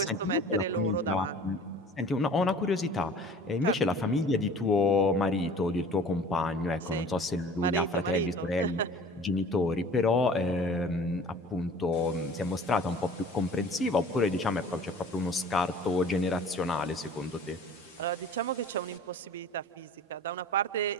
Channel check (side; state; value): both; normal; correlation 0.45